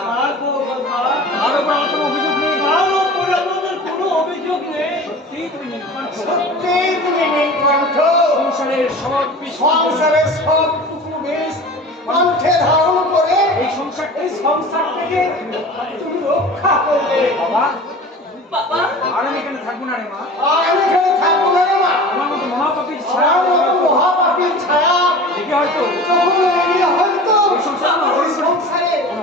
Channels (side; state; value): both; normal; correlation 0.38